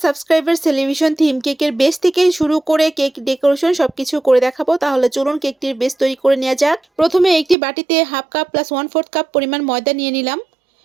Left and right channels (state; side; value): drops out; left; at 7.6 s